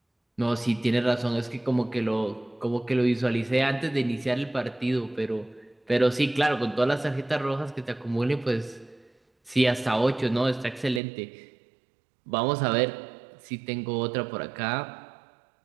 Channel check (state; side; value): drops out; left; at 11.0 s